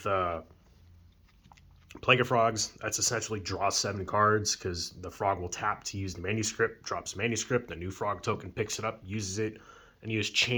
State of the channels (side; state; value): both; identical; correlation 1.00